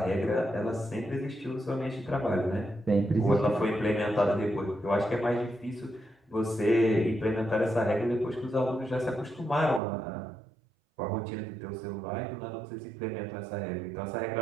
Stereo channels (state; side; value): drops out; left; at 9.8 s